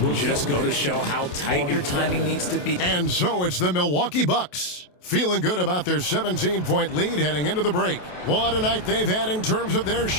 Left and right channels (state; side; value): late; right; 28 ms